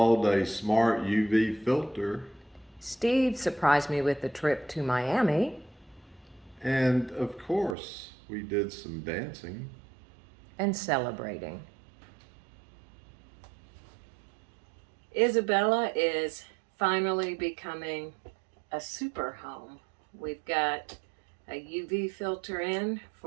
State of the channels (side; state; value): left; drops out; at 7.8 s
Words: a smart UV filter. Steve surprised me with a trip to Miami. And of course, we did some dancing. And celebrating. Isabella is finally becoming a super home. We've got a UV filter in